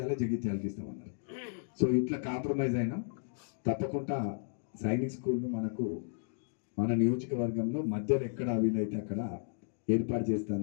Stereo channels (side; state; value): right; silent; digital silence